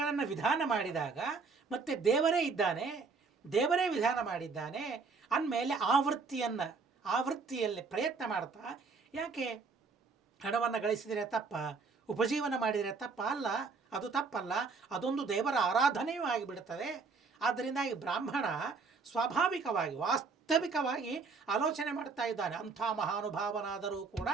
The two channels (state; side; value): quieter; left; 4.7 dB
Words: ವಿಧಾನ ಮಾಡಿದಾಗ, ಮತ್ತು ದೇವರೇ ಇದ್ದಾನೆ, ದೇವರೇ ವಿಧಾನ ಮಾಡಿದ್ದಾನೆ ಅಂದಮೇಲೆ ಆ ವೃತ್ತಿಯಲ್ಲಿ ಪ್ರಯತ್ನ ಮಾಡ್ತಾ ಯಾಕೆ ಹಣವನ್ನು ಗಳಿಸಿದರೆ ತಪ್ಪ, ಉಪಜೀವನ ಮಾಡಿದರೆ ತಪ್ಪ ಅಲ್ಲ, ಅದು ತಪ್ಪಲ್ಲ, ಅದೊಂದು ದೇವರ ಆರಾಧನೆಯೂ ಆಗಿಬಿಡುತ್ತದೆ. ಆದ್ದರಿಂದ ಈ ಬ್ರಾಹ್ಮಣ ಸ್ವಾಭಾವಿಕವಾಗಿ ವಾಸ್ತವಿಕವಾಗಿ ಆಲೋಚನೆ ಮಾಡ್ತಾ ಇದ್ದಾನೆ. ಅಂಥ ಮಹಾನುಭಾವನಾದರೂ ಕೂಡ